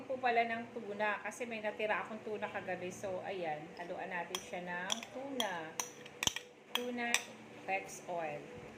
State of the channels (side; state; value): both; identical; correlation 1.00